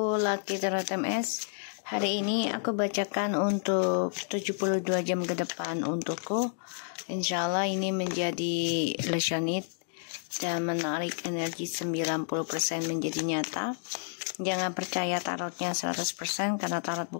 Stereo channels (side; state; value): right; silent; digital silence